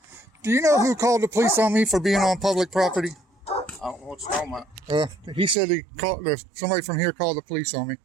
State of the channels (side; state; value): left; drops out; at 5.6 s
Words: Do you know who called the police on me for being on public property? I don't know what you're talking about. He said somebody from here called the police on me.